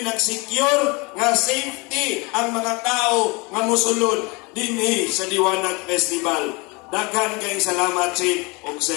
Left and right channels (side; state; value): right; quieter; 27.5 dB